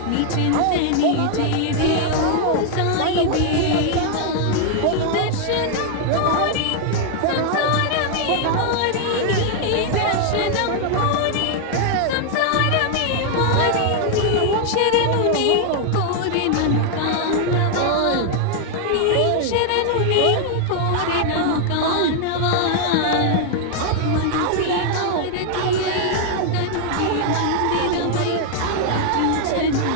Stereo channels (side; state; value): both; different; correlation 0.00